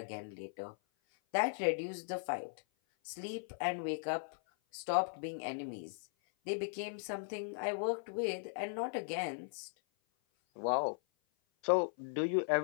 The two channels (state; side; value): silent; right; 52 dB below the other